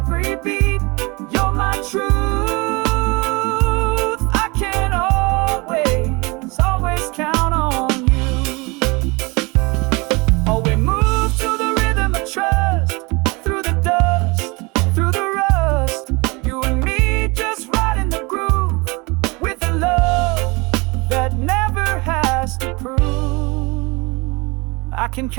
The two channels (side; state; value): left; quieter; 26.6 dB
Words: beat, you're my truth. I can always, always count on you. Oh, we move to the rhythm of trust, through the dust, through the rust. You and me just right in the groove, with a love that never has to prove. I can